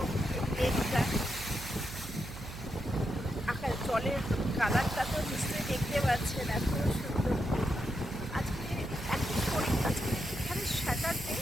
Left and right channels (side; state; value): right; noise; hum, 12 dB below the sound